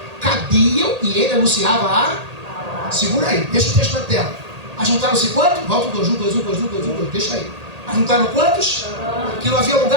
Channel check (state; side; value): late; left; 1.8 ms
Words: cabiam e ele anunciava a... Segura aí, deixa o texto na tela. Ajuntaram-se quantos? Volta o 2, 1, 2, 1, 2, 1, 2, 1, 2, deixa aí. Ajuntaram quantos? Que não havia